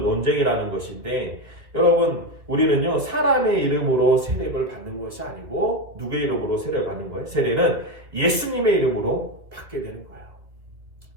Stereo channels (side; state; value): left; late; 2.2 ms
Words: 것인데 여러분 우리는요 사람의 이름으로 세례를 받는 것이 아니고 누구의 이름으로 세례를 받는 거예요? 세례는 예수님의 이름으로 받게 되는 거예요.